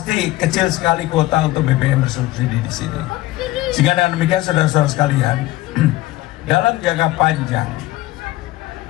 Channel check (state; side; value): quieter; right; 17.2 dB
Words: kecil sekali kuota untuk BBM bersubsidi di sini. Sehingga dengan demikian saudara-saudara sekalian, dalam jangka panjang